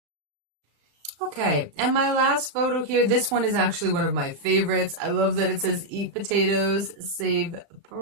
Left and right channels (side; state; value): left; late; 35 ms